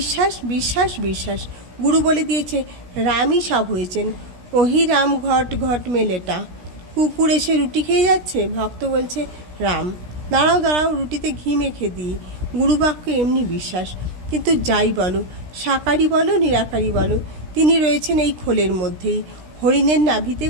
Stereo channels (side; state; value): left; late; 16 ms